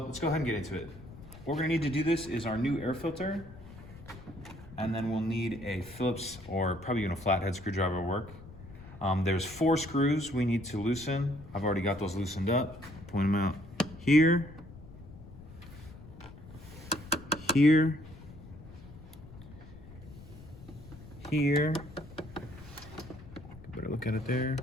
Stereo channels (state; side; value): noise; left; rumble, 17 dB below the sound